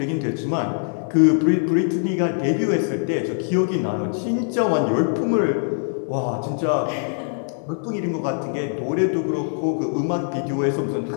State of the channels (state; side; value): silent; right; digital silence